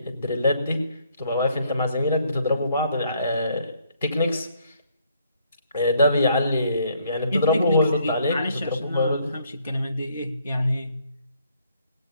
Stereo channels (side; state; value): both; inverted; correlation -0.68